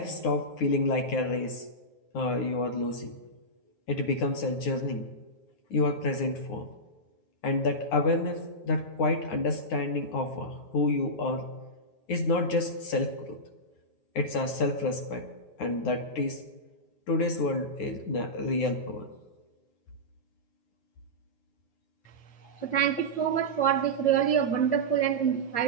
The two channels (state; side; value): late; right; 9.7 ms